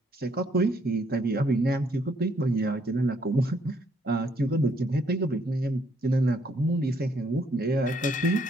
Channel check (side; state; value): both; normal; correlation 0.68